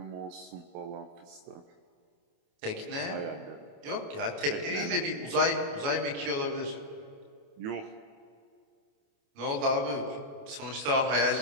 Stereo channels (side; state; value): left; late; 28 ms